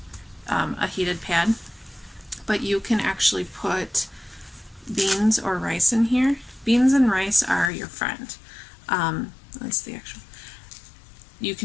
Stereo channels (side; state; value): right; drops out; at 7.7 s